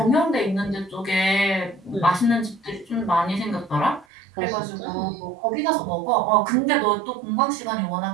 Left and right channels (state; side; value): drops out; left; at 4.0 s